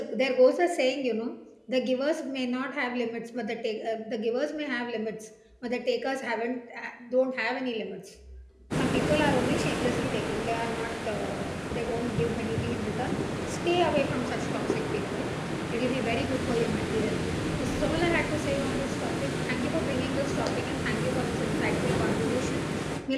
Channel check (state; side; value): identical; both; correlation 1.00